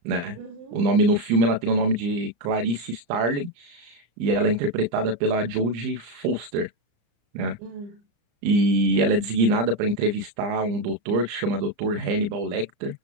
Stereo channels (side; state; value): left; late; 34 ms